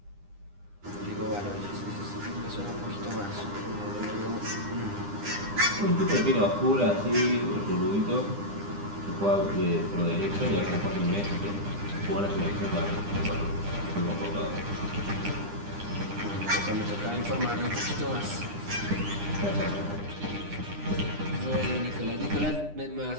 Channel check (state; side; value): late; left; 9.9 ms